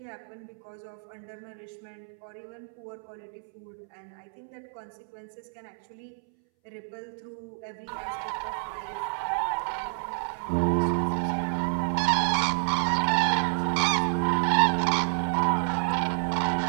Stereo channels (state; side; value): silent; left; 59 dB below the other